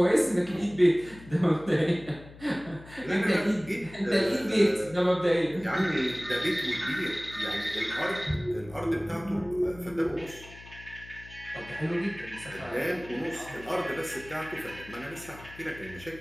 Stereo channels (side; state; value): left; noise; hum, 18 dB below the sound